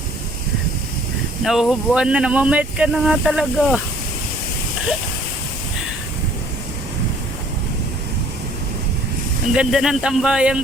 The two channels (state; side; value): normal; both; correlation 0.56